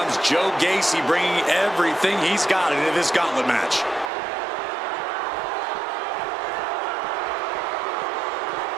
Joe Gacy bringing everything he's got into this gauntlet match.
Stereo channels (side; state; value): left; drops out; at 4.1 s